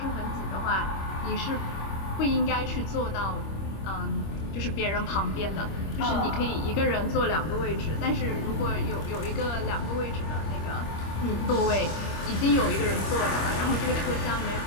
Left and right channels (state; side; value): late; right; 25 ms